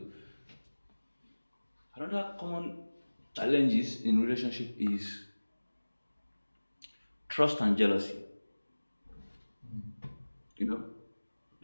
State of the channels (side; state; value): both; inverted; correlation -1.00